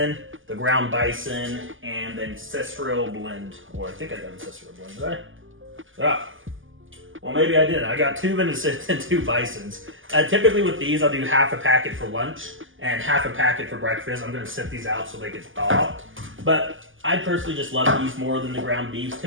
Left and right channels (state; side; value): late; left; 0.58 ms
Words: the ground bison, and the ancestral blend. Or I think I got ancestral blend, did I? Ah. Well, maybe I didn't. I got 2 venison and 2 bisons. Typically with these, I'll do half a packet for lunch and half a packet for breakfast. I'm going to set these out so they get thawed. But I personally just love these more than the ground beef.